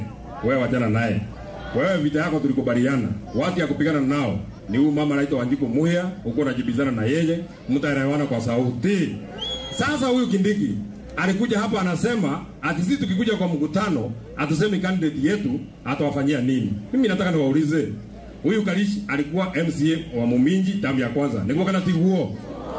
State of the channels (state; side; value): identical; both; correlation 1.00